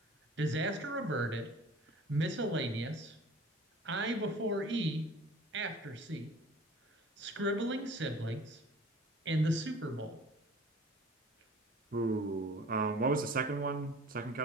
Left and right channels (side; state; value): both; normal; correlation 0.46